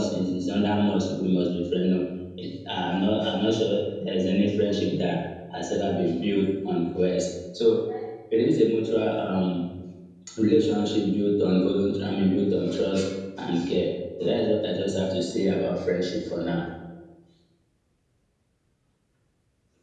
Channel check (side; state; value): both; identical; correlation 1.00